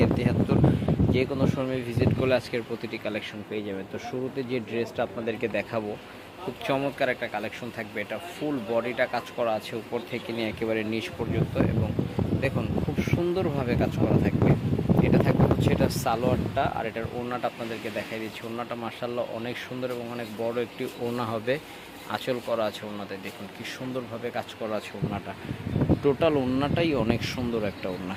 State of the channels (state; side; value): identical; both; correlation 1.00